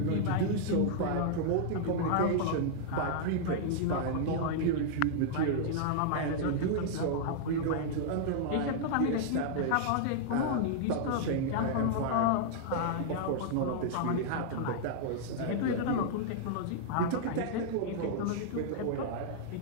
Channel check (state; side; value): different; both; correlation -0.01